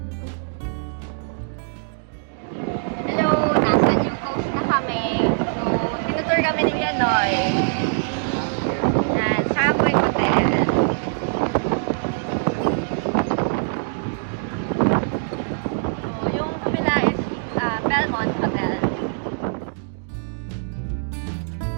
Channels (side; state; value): left; silent; digital silence